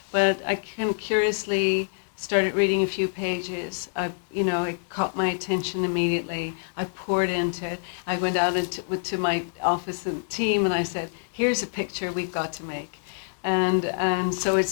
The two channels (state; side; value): silent; right; digital silence